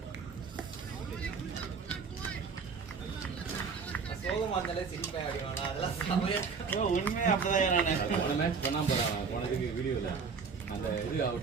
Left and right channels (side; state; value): left; quieter; 5.4 dB